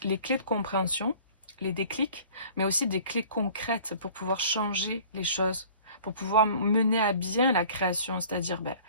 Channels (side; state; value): both; inverted; correlation -0.48